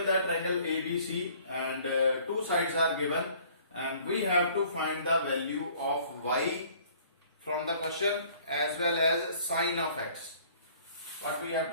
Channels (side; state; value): both; inverted; correlation -0.55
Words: that triangle ABC and two sides are given and we have to find the value of y from the question as well as sine of x. What we have